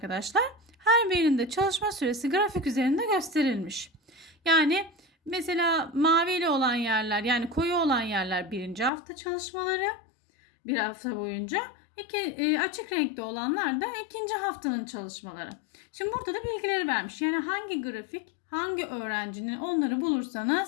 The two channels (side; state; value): right; drops out; at 8.9 s